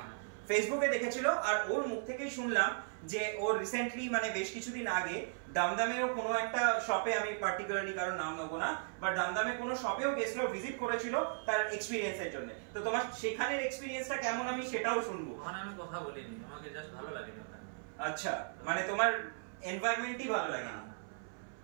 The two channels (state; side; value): silent; left; 53 dB below the other